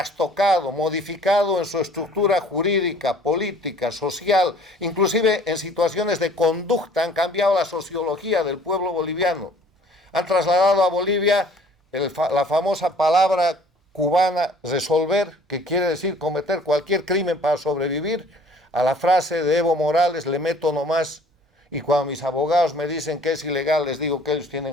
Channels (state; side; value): normal; both; correlation 0.54